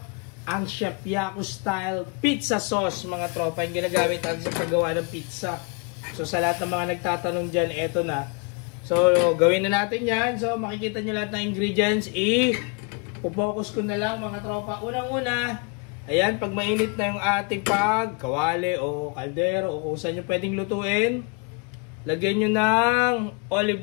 ang Chef Yaco style pizza sauce mga tropa. Yung ginagamit natin sa paggawa ng pizza. So sa lahat ng mga nagtatanong dyan, eto na. So gawin na natin yan. So makikita nyo lahat ng ingredients. Focus ko na lang mga tropa. Unang-una, ayan, pag mainit na yung ating kawali o kaldero o kung saan nyo pwedeng lutuin, lagyan nyo ng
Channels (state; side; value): quieter; right; 34.0 dB